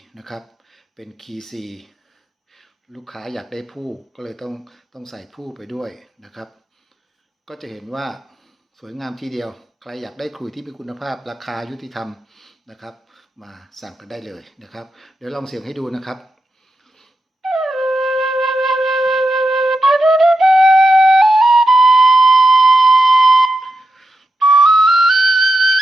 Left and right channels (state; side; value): normal; both; correlation 0.88